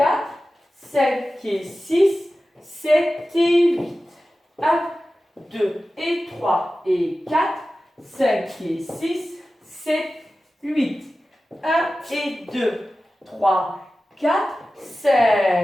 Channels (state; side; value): normal; both; correlation 0.95